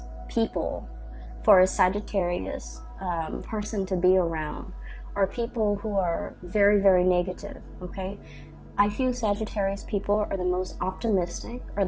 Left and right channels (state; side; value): identical; both; correlation 1.00